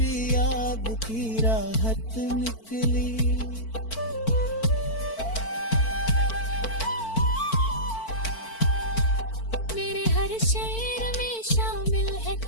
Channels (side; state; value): right; late; 4.5 ms